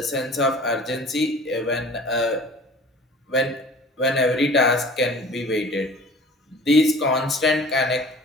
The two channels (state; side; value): normal; both; correlation 0.45